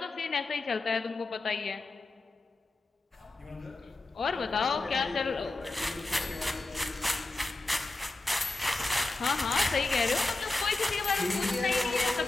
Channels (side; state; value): right; quieter; 3.1 dB